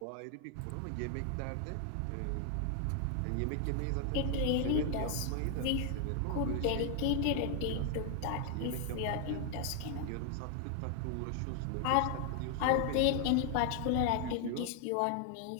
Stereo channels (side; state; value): both; different; correlation 0.00